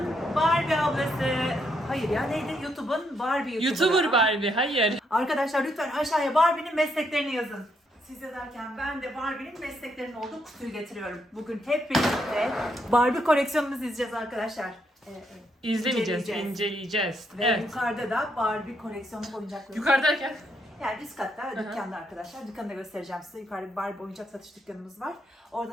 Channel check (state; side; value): normal; both; correlation 0.76